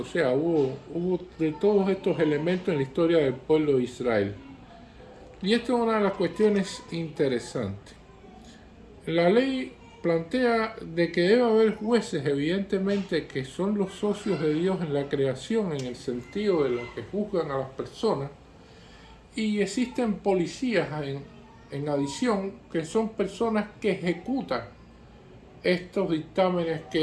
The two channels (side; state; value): both; identical; correlation 1.00